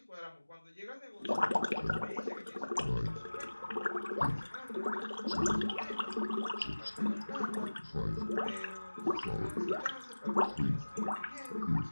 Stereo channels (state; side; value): inverted; both; correlation -1.00